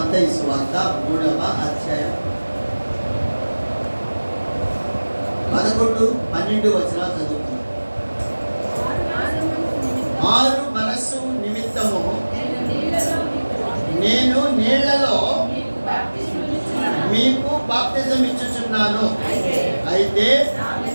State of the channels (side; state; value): both; inverted; correlation -1.00